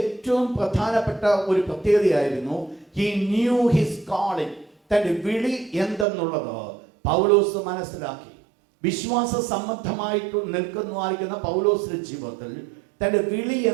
പ്രധാനപ്പെട്ട ഒരു പ്രത്യേകതയായിരുന്നു he knew his calling. തന്റെ വിളി എന്തെന്നുള്ളത് പൗലോസ് മനസ്സിലാക്കി. വിശ്വാസ സംബന്ധമായിട്ട് നിൽക്കുന്നതായിരിക്കുന്ന പൗലോസിന്റെ ജീവിതത്തിൽ തന്റെ വിളി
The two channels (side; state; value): left; drops out; at 6.1 s